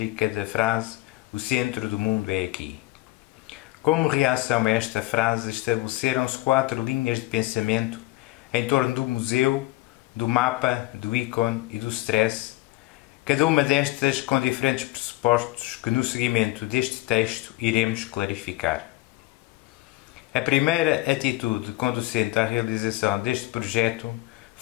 da frase "O centro do mundo é aqui". Como reação a esta frase, estabeleceram-se 4 linhas de pensamento em torno do museu, do mapa, do ícone e do stress, cada uma destas com diferentes pressupostos que no seguimento deste texto iremos clarificar. A primeira atitude conducente à realização deste projeto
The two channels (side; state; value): right; quieter; 19.0 dB